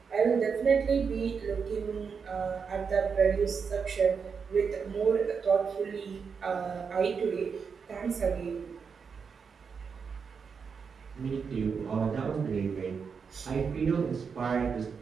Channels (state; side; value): quieter; left; 5.9 dB